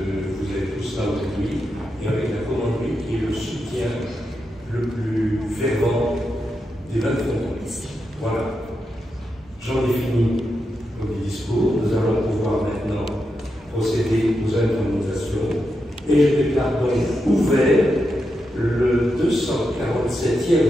des 20 frontons. Voilà. J'en ai fini le discours. Nous allons pouvoir maintenant procéder aux intronisations. Et je déclare donc ouvert le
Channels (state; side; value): normal; both; correlation 0.86